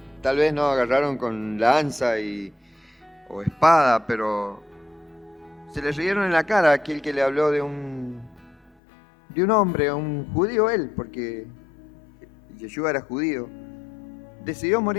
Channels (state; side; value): drops out; right; at 8.7 s